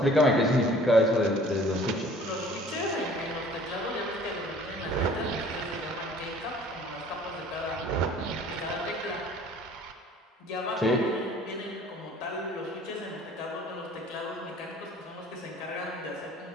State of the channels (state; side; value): normal; both; correlation 0.51